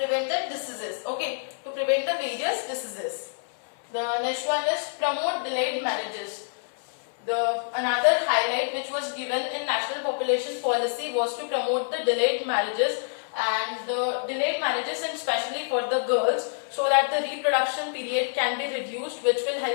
diseases. Okay, to prevent the various diseases. The next one is promote delayed marriages. Another highlight which was given in National Population Policy was to promote the delayed marriages, and the delayed marriages, and especially for the girls, so that the reproduction period can be reduced, which will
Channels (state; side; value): silent; right; 60 dB below the other